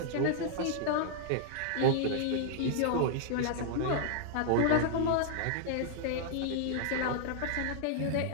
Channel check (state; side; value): different; both; correlation -0.01